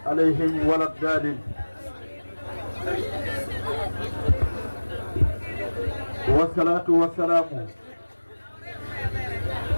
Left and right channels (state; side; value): inverted; both; correlation -1.00